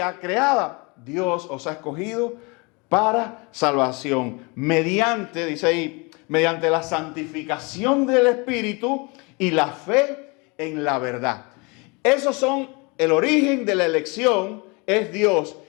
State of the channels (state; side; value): quieter; right; 28.9 dB